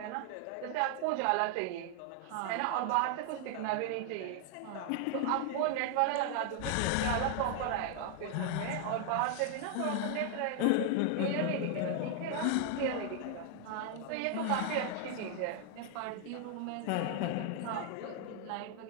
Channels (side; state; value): both; different; correlation 0.00